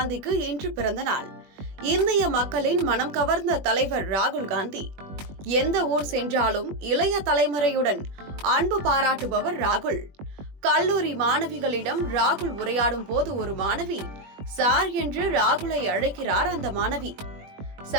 இன்று பிறந்த நாள். இந்திய மக்களின் மனம் கவர்ந்த தலைவர் ராகுல் காந்தி. எந்த ஊர் சென்றாலும் இளைய தலைமுறையுடன் அன்பு பாராட்டுபவர் ராகுல். கல்லூரி மாணவிகளிடம் ராகுல் உரையாடும் போது ஒரு மாணவி சார் என்று ராகுலை அழைக்கிறார். அந்த மாணவி,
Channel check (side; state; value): left; late; 21 ms